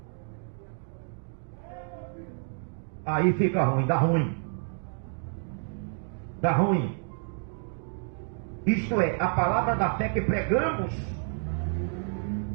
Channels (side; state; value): left; silent; 58 dB below the other